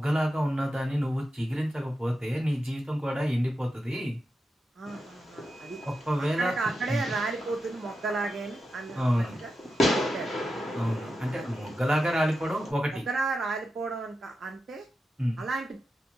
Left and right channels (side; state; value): both; normal; correlation 0.89